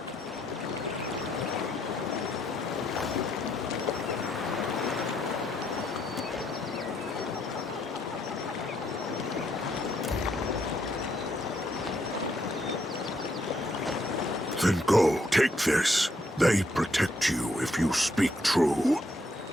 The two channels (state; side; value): normal; both; correlation 0.73